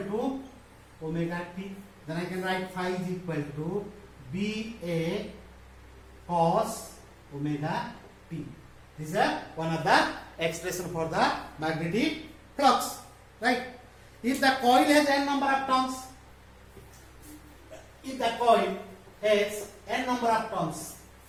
omega t. Then I can write phi is equal to BA cos omega t. This is one of the expression for the magnetic flux. Right? If the coil has n number of turns, if the coil has n number of turns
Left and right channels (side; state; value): both; identical; correlation 1.00